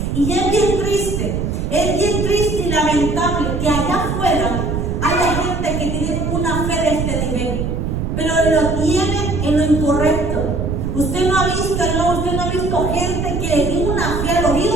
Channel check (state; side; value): noise; right; rumble, 2 dB below the sound